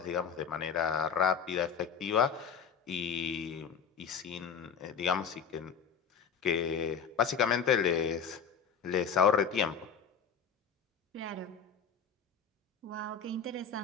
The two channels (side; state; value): right; quieter; 6.6 dB